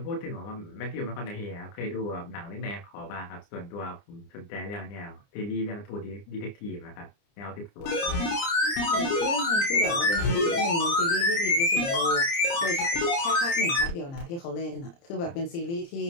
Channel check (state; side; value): late; right; 29 ms